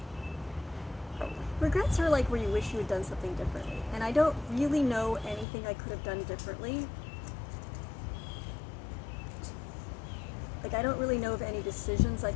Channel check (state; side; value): drops out; right; at 5.5 s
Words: Probably. Regrets are like where you wish you had done something differently. And I don't really know anything I could have done differently. Like, I don't really know of any decisions I